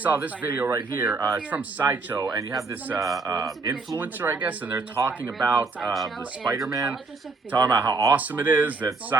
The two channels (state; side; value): quieter; left; 4.0 dB